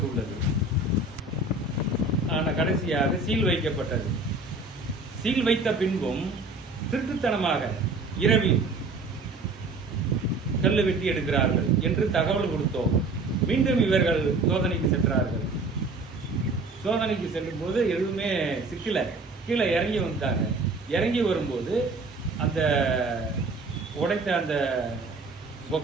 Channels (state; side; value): quieter; left; 3.3 dB